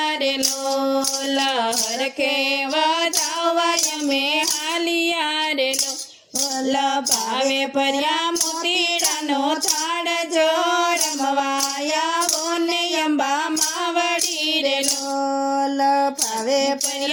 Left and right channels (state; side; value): identical; both; correlation 1.00